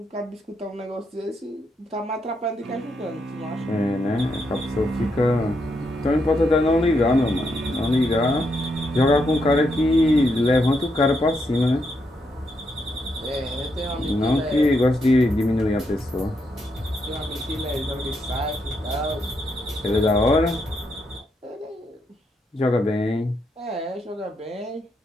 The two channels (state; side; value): normal; both; correlation 0.80